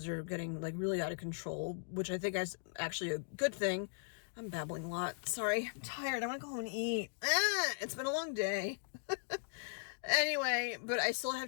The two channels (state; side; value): silent; right; digital silence